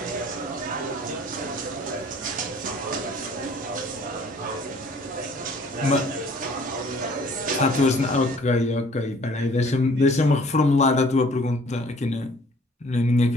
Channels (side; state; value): both; normal; correlation 0.55